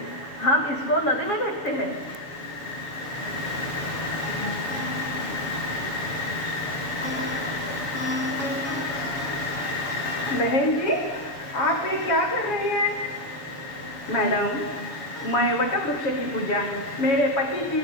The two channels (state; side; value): late; right; 7.0 ms